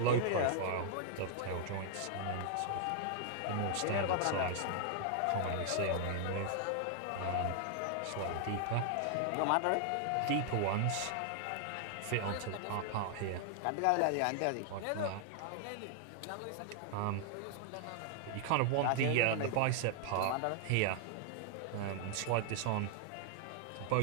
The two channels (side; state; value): both; different; correlation 0.00